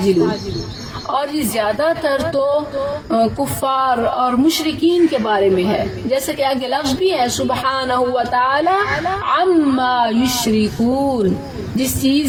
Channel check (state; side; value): identical; both; correlation 1.00